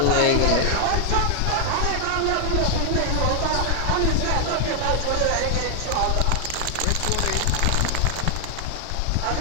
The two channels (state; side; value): different; both; correlation 0.00